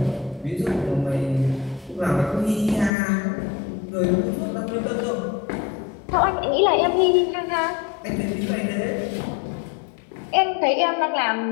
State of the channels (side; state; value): right; drops out; at 2.9 s